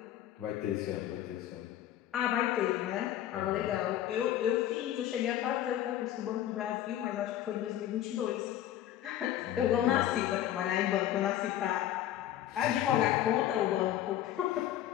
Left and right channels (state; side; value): quieter; right; 12.2 dB